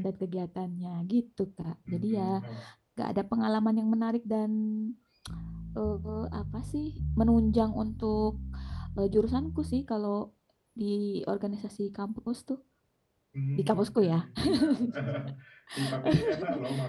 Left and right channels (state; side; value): identical; both; correlation 1.00